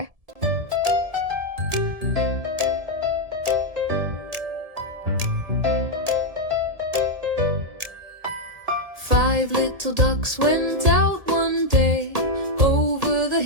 Five little ducks went out one day, over the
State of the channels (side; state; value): left; late; 1.7 ms